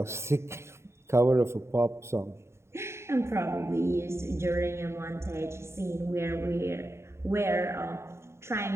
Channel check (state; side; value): late; left; 0.13 ms